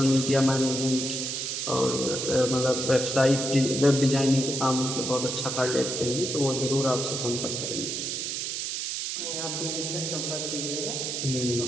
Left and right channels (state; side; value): noise; right; hiss, 3 dB below the sound